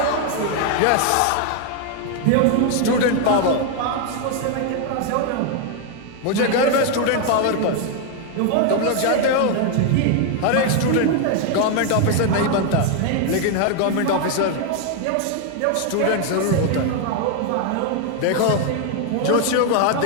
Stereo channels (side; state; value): both; different; correlation 0.01